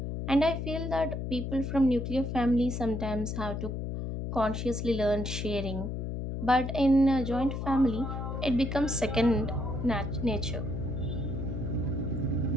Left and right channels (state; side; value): noise; left; hum, 4 dB below the sound